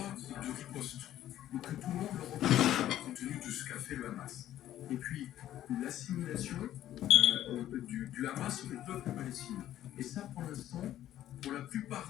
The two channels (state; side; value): quieter; right; 12.5 dB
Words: de riposte, donc que tout le monde le reconnaît compte tenu de ce qu'a fait le Hamas, et puis l'assimilation du Hamas au peuple palestinien. Et ça, pour l'instant, pour la